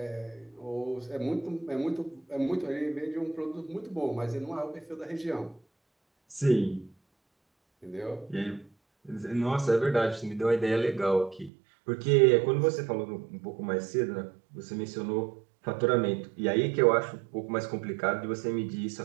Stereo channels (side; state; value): left; drops out; at 11.5 s